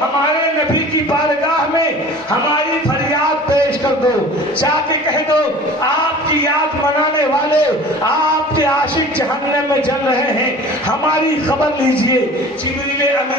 نبی کی بارگاہ میں ہماری فریاد پیش کر دو. جا کے کہہ دو آپ کی یاد منانے والے, آپ کے عاشق جہنم میں جل رہے ہیں, ہماری خبر لیجئے. جبریل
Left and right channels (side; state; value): both; normal; correlation 0.42